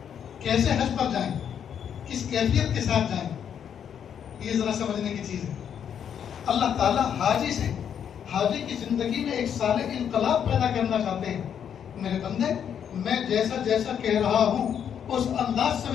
کیسے حج پر جائیں، کس کیفیت کے ساتھ جائیں، یہ ذرا سمجھنے کی چیز ہے۔ اللہ تعالیٰ حاجی کی زندگی میں ایک صالح انقلاب پیدا کرنا چاہتے ہیں. میرے بندے، میں جیسا جیسا کہہ رہا ہوں اس انداز سے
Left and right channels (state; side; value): quieter; right; 8.5 dB